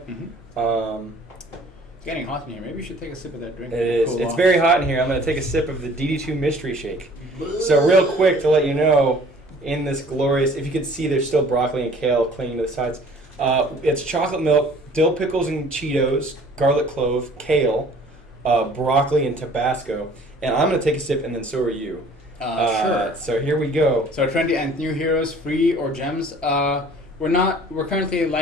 It's getting hot in here. Maybe you should take a sip of that drink. It is. It's very hot in here. I'm going to take a sip of the DD2 Mystery Shake. So real quick to let you know, in this glorious, if you could see, there's still broccoli and kale clinging to the sides. It's chocolate milk, dill pickles and Cheetos, garlic clove, kale, broccoli, and Tabasco. And I'm going to take a sip, and then so are you. Sure. So here we go. So trendy and new heroes, free or gems. We're currently,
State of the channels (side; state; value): both; normal; correlation 0.52